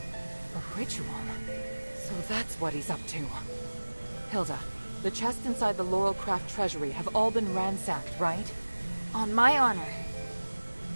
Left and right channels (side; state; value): both; inverted; correlation -1.00